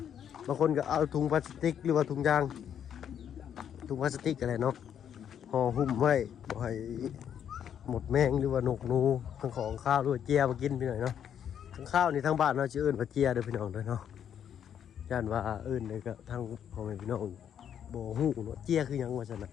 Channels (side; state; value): right; quieter; 9.0 dB